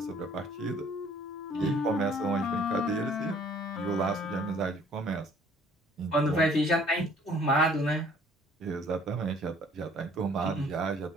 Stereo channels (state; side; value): normal; both; correlation 0.57